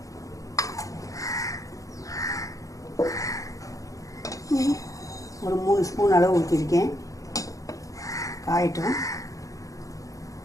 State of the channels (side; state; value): right; late; 0.16 ms